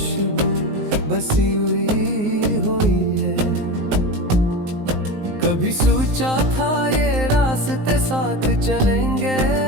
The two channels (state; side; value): late; left; 19 ms